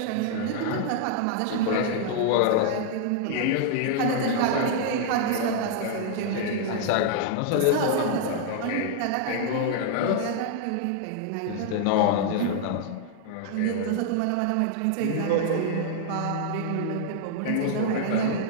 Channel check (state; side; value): different; both; correlation -0.01